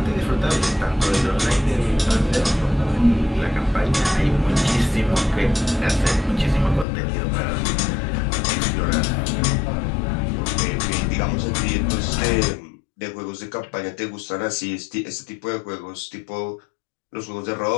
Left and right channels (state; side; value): drops out; right; at 6.9 s